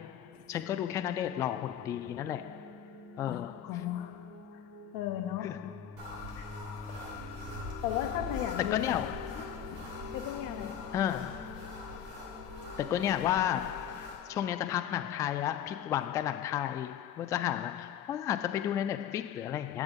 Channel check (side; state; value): right; quieter; 9.9 dB